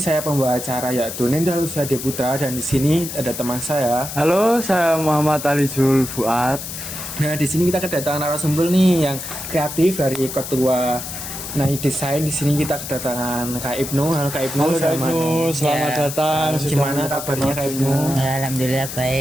saya pembawa acara yaitu Nendra Lusiade Putra dan di sini ada teman saya. Halo, saya Muhammad Ali Jul Fuad. Nah, di sini kita kedatangan narasumber nih yang kreatif dari ketua Nai Desain. Di sini kita kedatangan Kak Ibnu. Halo Kak Ibnu. Halo Kak Ibnu, selamat datang. Gimana kabarnya Kak Ibnu? Alhamdulillah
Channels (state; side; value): noise; left; hiss, 8 dB below the sound